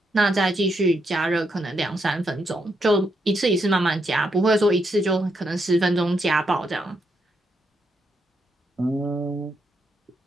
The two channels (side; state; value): both; normal; correlation 0.79